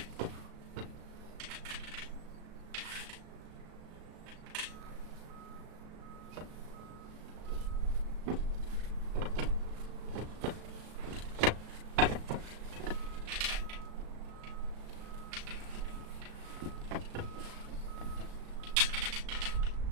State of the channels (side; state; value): left; late; 36 ms